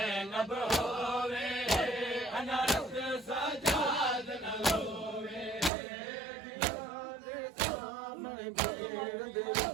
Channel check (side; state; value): left; drops out; at 5.7 s